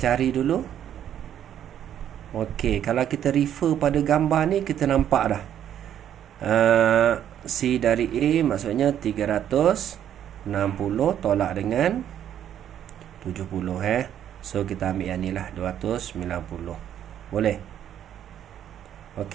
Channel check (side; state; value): left; quieter; 10.2 dB